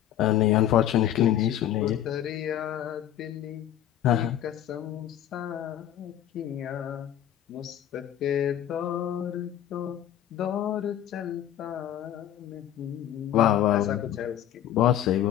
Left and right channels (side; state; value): right; quieter; 11.4 dB